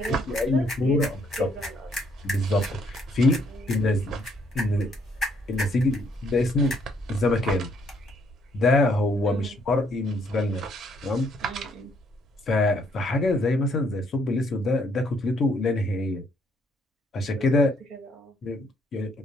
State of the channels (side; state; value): both; normal; correlation 0.68